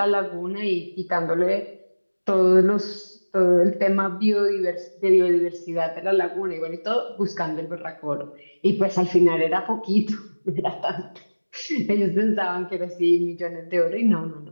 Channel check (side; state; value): both; inverted; correlation -1.00